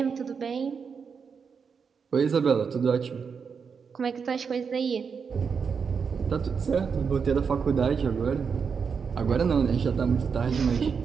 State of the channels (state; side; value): quieter; left; 6.0 dB